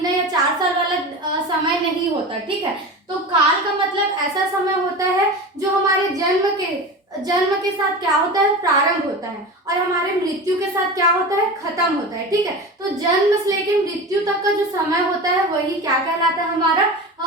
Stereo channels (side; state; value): both; normal; correlation 0.29